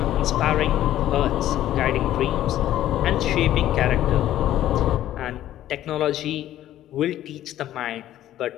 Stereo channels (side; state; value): right; quieter; 12.9 dB